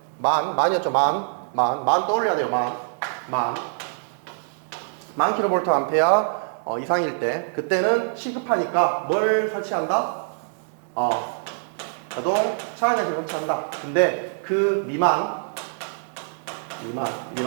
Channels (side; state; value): left; silent; 61 dB below the other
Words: 만이었죠. 만 떠올려야 돼요. 만 킬로볼트 암페어 이상일 때, 그때는 시급하니까 뭘 설치한다? 자동 차량장치 설치한다. 근데 그 미만인